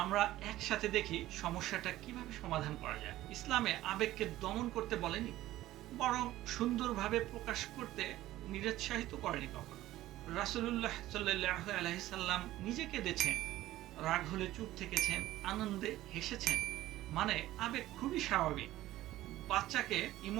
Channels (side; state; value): left; quieter; 15.3 dB